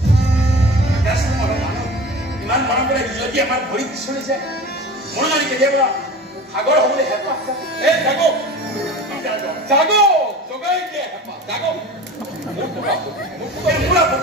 ইমান মৰম কৰে যদি আমাৰ ভৰিত চলিছে মোৰ যদি কেতিয়াবা সাগৰ হ'বলৈ হেঁপাহ এই জাগো জগাই দিয়ে হেঁপাহ জাগো মোৰ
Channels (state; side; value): normal; both; correlation 0.36